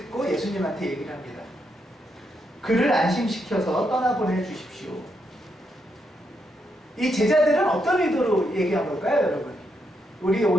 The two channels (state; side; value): normal; both; correlation 0.80